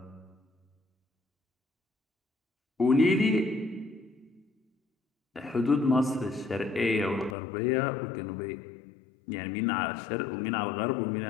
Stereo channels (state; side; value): drops out; right; at 7.4 s